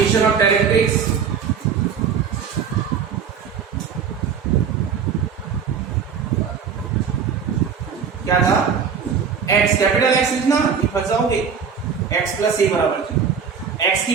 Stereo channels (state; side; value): quieter; left; 6.7 dB